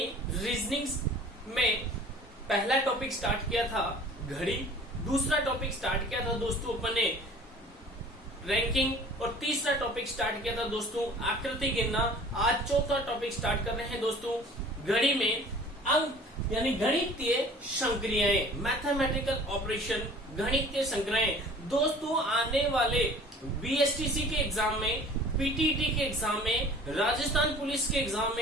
रीजनिंग में पहला टॉपिक स्टार्ट किया था घड़ी, दूसरा टॉपिक स्टार्ट किया था दोस्तों अपन ने रैंकिंग, और तीसरा टॉपिक स्टार्ट किया था दोस्तों आकृति गिनना। आज चौथा टॉपिक स्टार्ट कर रहे हैं दोस्तों घड़ी में अंक यानी गणितीय संक्रियाएं, मैथमेटिकल ऑपरेशन, गणितीय संक्रियाएं। दोस्तों आने वाले बीएसटीसी के एग्जाम में, पीटीटी के एग्जाम में, राजस्थान पुलिस के एग्जाम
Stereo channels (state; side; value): normal; both; correlation 0.47